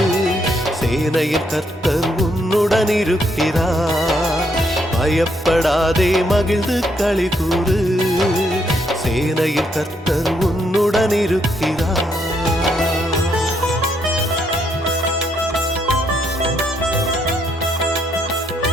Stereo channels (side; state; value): both; normal; correlation 0.74